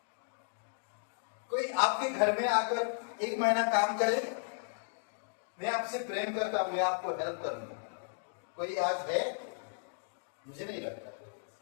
कोई आपके घर में आकर 1 महीना काम करे, मैं आपसे प्रेम करता हूं, मैं आपको हेल्प करूंगा, कोई आज है? मुझे नहीं लगता।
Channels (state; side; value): silent; right; digital silence